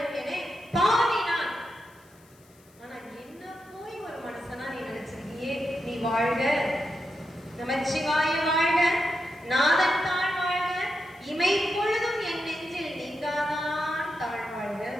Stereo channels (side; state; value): left; noise; hiss, 29 dB below the sound